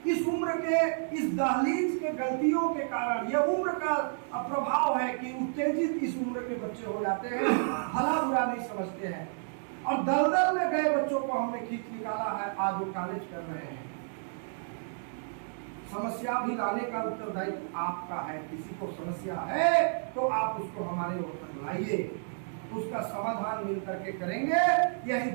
इस उम्र के, इस दहलीज के गलतियों के कारण, यह उम्र का प्रभाव है कि उत्तेजित इस उम्र के बच्चे हो जाते हैं, भला बुरा नहीं समझते हैं, और दलदल में गए बच्चों को हमने खींच निकाला है, आज वो कॉलेज कर रहे हैं। समस्या भी लाने का उत्तरदायित्व आपका है। किसी को समस्या है तो आप उसको हमारे ओर तक लाइए, उसका समाधान मिल करके करेंगे। यही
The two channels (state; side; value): silent; left; digital silence